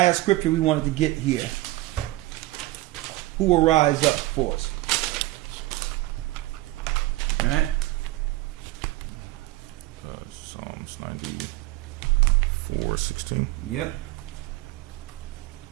scripture we wanted to get here. Who will rise up for us? All right. Psalms 94:16. Yep.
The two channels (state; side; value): quieter; left; 18.5 dB